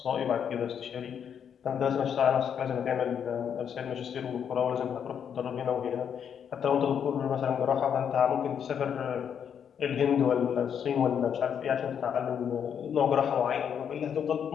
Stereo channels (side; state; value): right; quieter; 8.0 dB